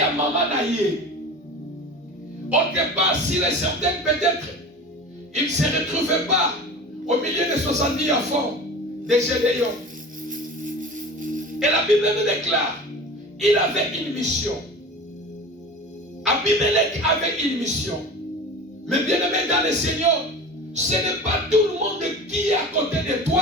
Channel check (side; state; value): both; normal; correlation 0.35